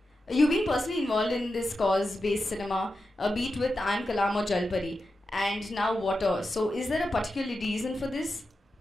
You've been personally involved in this cause-based cinema, be it with I Am Kalam or Jalpari, and now water. So is there a particular reason for this?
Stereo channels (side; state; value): both; normal; correlation 0.90